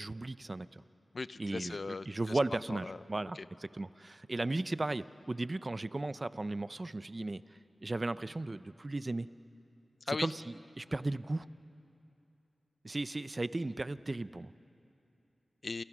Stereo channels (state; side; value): normal; both; correlation 0.98